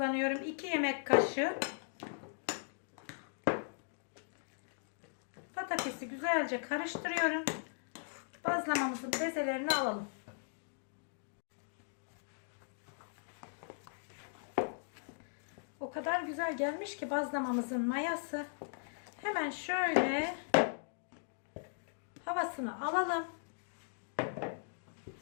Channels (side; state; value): right; silent; digital silence